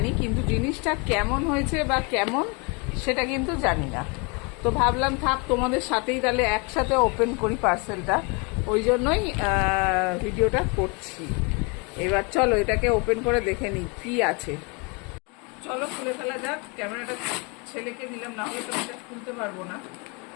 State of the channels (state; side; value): quieter; right; 31.3 dB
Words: কিন্তু জিনিসটা কেমন হয়েছে বা কেমন সেটা কিন্তু জানি না। তো ভাবলাম থাক, তোমাদের সাথেই তাহলে একসাথে ওপেন করি পার্সেলটা, ওই জন্যই ভিডিওটা করছি। এবার চলো এটাকে ওপেন করে দেখে নিই কি আছে। চলো খুলে ফেলা যাক। ক্যামেরাটা ছেলেকে দিলাম, না হলে তো এটা খুলতে পারবো না।